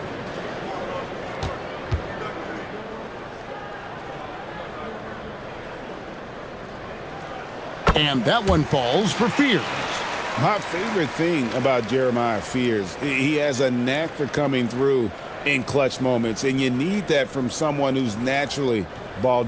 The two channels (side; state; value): both; identical; correlation 1.00